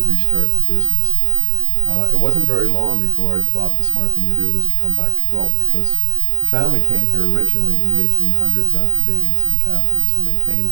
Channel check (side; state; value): left; silent; 66 dB below the other